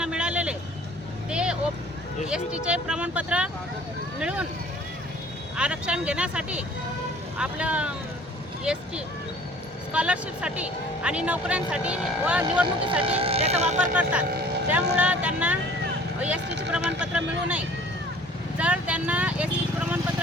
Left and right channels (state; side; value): normal; both; correlation 0.51